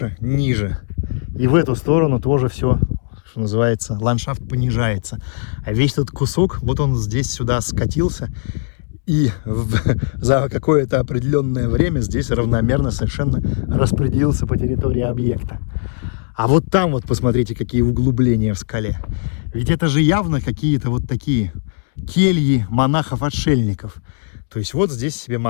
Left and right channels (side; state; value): right; silent; 67 dB below the other